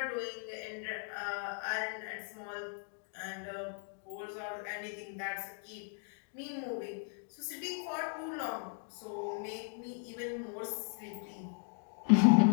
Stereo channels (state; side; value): silent; right; 53 dB below the other